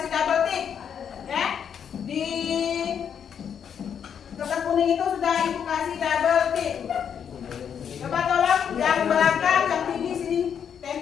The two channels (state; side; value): quieter; right; 7.9 dB